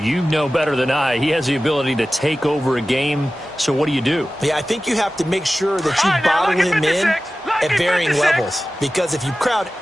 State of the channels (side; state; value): both; normal; correlation 0.95